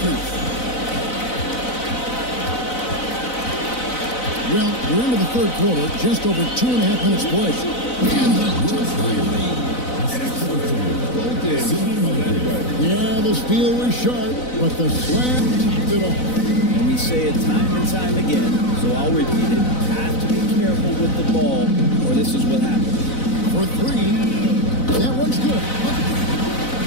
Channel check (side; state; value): right; late; 4.0 ms